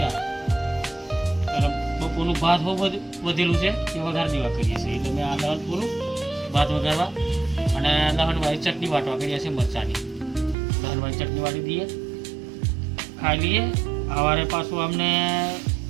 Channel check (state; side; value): drops out; left; at 10.6 s